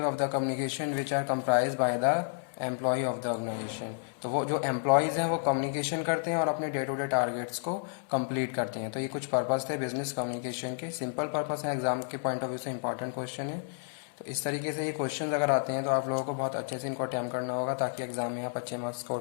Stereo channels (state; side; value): silent; right; 57 dB below the other